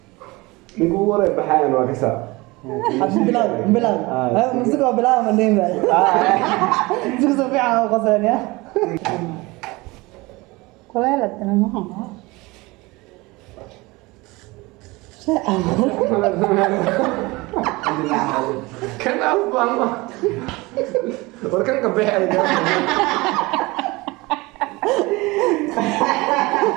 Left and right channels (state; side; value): quieter; left; 22.7 dB